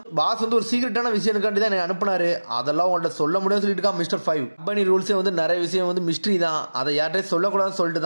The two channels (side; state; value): both; inverted; correlation -1.00